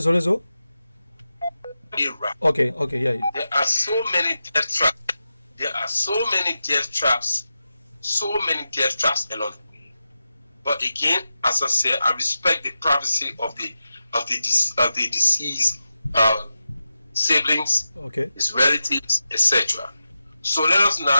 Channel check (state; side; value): inverted; both; correlation -0.91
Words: Okay, yeah. There are so many death traps. So many death traps along the way. But again, as I said, I respect the privacy of the deceased siblings, his relatives, etc. So let us